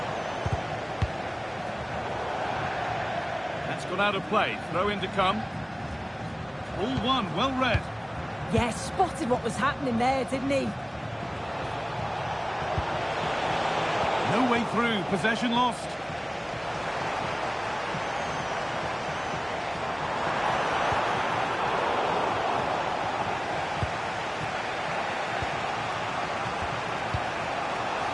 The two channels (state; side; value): identical; both; correlation 1.00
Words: That's gone out of play. Throw in to come. All one, well read. Yeah, spotted what was happening there, didn't he? No way through. Possession lost.